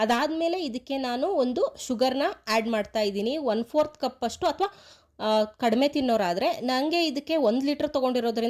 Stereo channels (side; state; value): both; identical; correlation 1.00